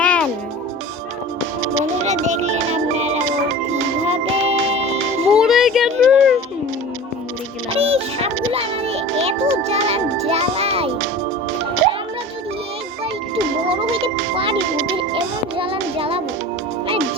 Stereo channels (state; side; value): normal; both; correlation 0.37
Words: বন্ধুরা দেখলেন আপনারা ও কিভাবে মরে গেল। এই সাপগুলো আমাদের এত জ্বালায়। আমরা যদি একবার একটু বড় হইতে পারি ওদের এমন জ্বালাবো মানে